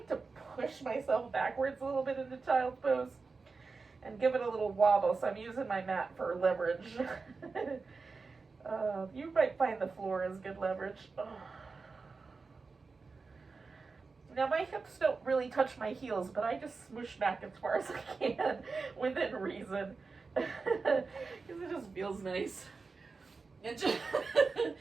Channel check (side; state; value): left; quieter; 4.4 dB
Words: to push myself backwards a little bit into child's pose and give it a little wobble, so I'm using my mat for leverage. You might find the floor is good leverage. Now my hips don't really touch my heels, but I just smoosh back as far as I can within reason. Because it just feels nice. And just